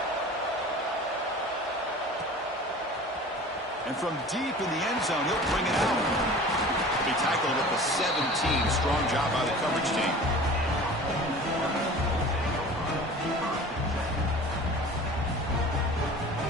And from deep in the end zone, he'll bring it out. He'll be tackled at the 17. Strong job by the coverage team.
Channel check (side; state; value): both; normal; correlation 0.41